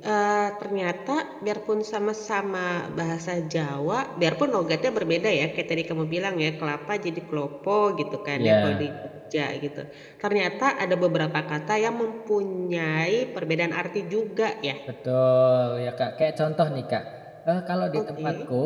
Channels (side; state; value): both; identical; correlation 1.00